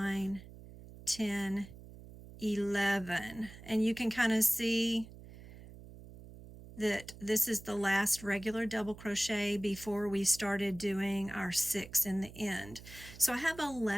10, 11. And you can kind of see that this is the last regular double crochet before we started doing our 6 in the end. So I have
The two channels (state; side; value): noise; right; hum, 17 dB below the sound